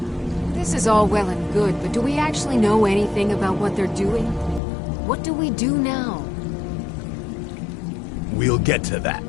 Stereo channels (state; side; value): drops out; right; at 4.6 s